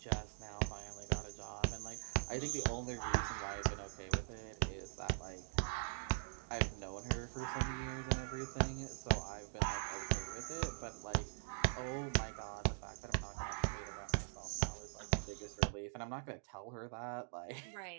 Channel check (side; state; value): left; silent; digital silence